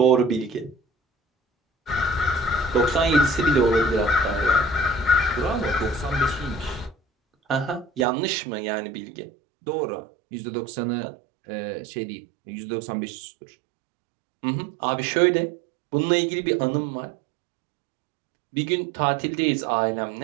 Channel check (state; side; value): drops out; left; at 8.1 s